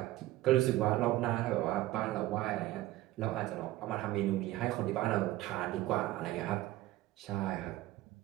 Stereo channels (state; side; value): quieter; left; 16.4 dB